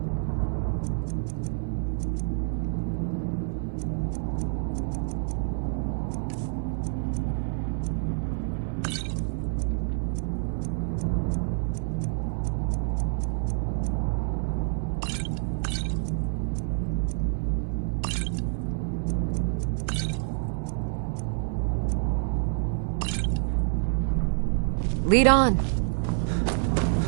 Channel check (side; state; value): left; silent; 59 dB below the other